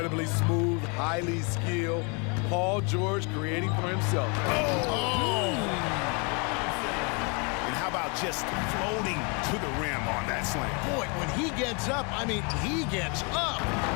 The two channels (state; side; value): quieter; right; 33.9 dB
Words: smooth, highly skilled. Paul George creating for himself. And how about just floating to the rim on that slam? Boy, when he gets up, he gets up.